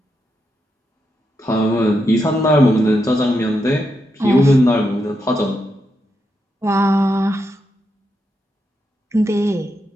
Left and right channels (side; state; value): both; normal; correlation 0.84